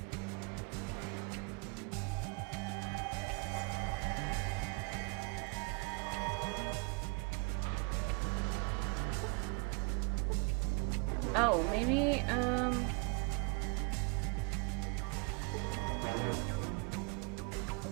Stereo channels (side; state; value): left; quieter; 34.5 dB